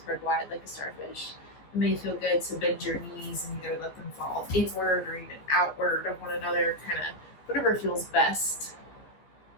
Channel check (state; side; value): late; right; 15 ms